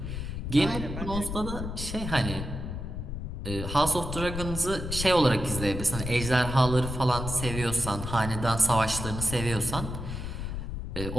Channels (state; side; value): noise; left; rumble, 6 dB below the sound